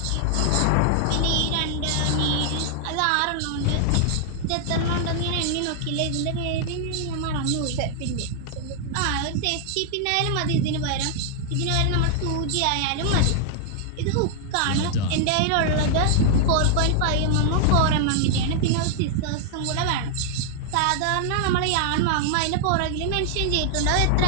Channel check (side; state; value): both; different; correlation -0.01